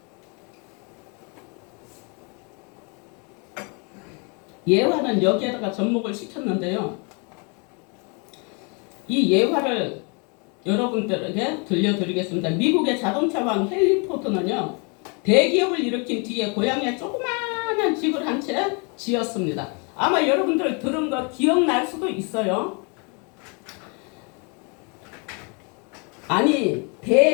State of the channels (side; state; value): right; quieter; 34.2 dB